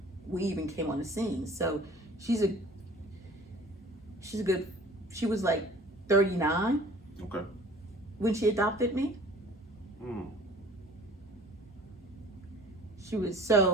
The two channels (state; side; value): normal; both; correlation 0.48